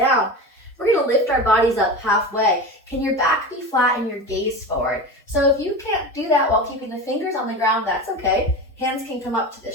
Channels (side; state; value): both; normal; correlation 0.27